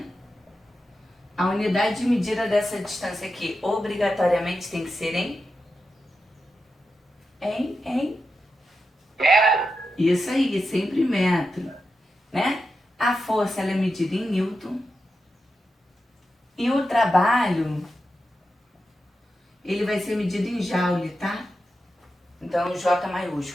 A unidade de medida dessa distância aqui obrigatoriamente tem que ser em? Isso aí, sempre metro, né? A força ela é medida em Newton e o trabalho ele vai ser medido em Joule, tá? Então J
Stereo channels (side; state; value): both; normal; correlation 0.88